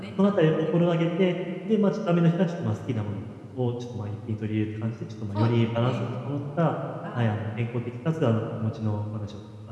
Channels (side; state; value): both; identical; correlation 1.00